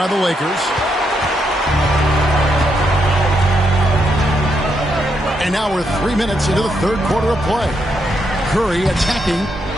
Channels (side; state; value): both; normal; correlation 0.79